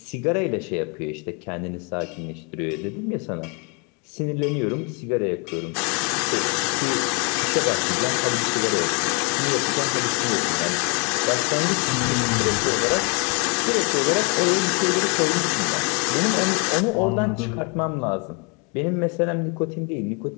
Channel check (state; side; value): quieter; right; 33.3 dB